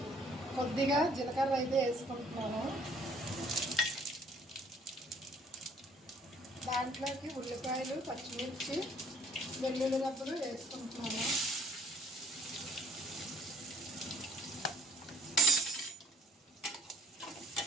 కొద్దిగా జీలకర్ర అయితే వేసుకుంటున్నాను. దాంట్లోకి ఉల్లిపాయలు, పచ్చిమిర్చి, వెల్లుల్లి రబ్బలు వేసుకుంటున్నాను.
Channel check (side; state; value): both; normal; correlation 0.59